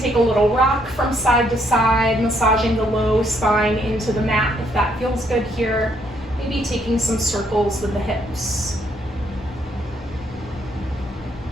a little rock from side to side, massaging the low spine into the mat if that feels good here. Maybe taking some circles with the hips.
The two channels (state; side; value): normal; both; correlation 0.71